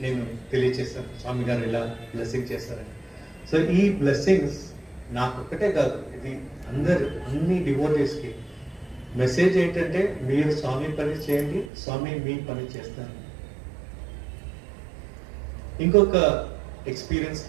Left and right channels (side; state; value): left; drops out; at 11.7 s